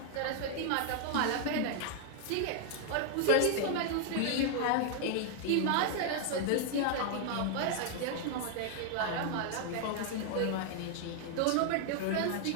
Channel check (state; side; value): different; both; correlation 0.00